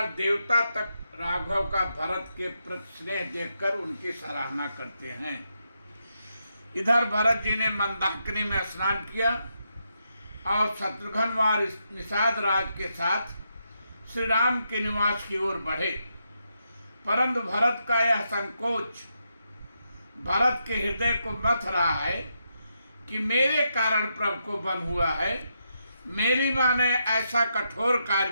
देवता तक राघव का भरत के प्रति स्नेह देखकर उनकी सराहना करते हैं। इधर भरत जी ने मंदाकिनी में स्नान किया और शत्रुघ्न और निषाद राज के साथ श्री राम के निवास की ओर बढ़े। परंतु भरत का यह संकोच भरत के हृदय को मथ रहा है कि मेरे कारण प्रभु को बन हुआ है। मेरी माँ ने ऐसा कठोर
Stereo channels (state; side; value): inverted; both; correlation -0.83